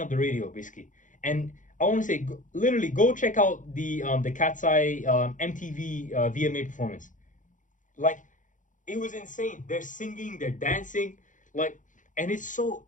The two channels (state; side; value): late; right; 0.37 ms